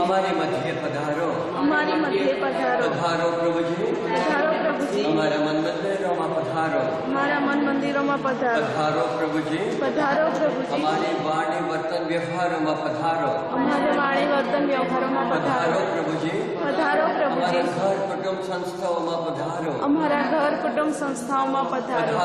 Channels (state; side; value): identical; both; correlation 1.00